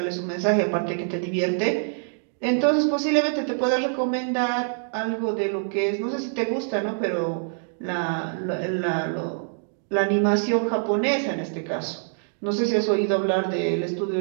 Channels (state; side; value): silent; left; digital silence